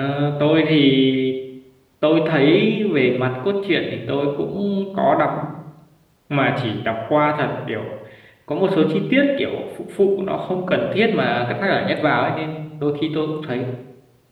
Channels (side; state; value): both; identical; correlation 1.00